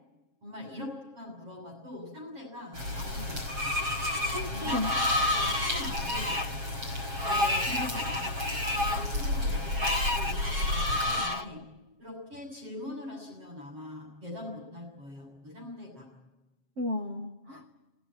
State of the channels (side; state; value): left; late; 7.4 ms